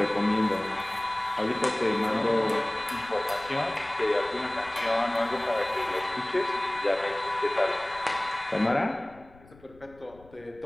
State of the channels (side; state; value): left; noise; rumble, 25 dB below the sound